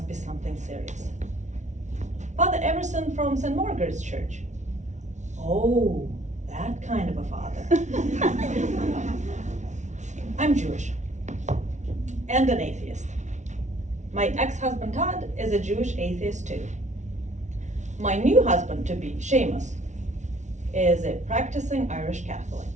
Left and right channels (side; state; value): left; late; 0.34 ms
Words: be something serious. Father Everson from St. Margaret's Church. Oh, that kind of a father. I'm Jewish and an atheist. My ex-husband Todd is a Jewish atheist too. My new husband-to-be, Seamus, is a practicing Irish Catholic.